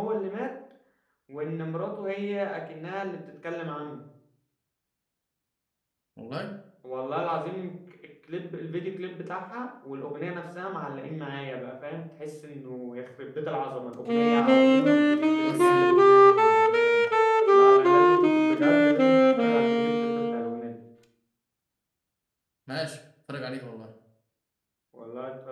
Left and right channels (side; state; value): both; identical; correlation 1.00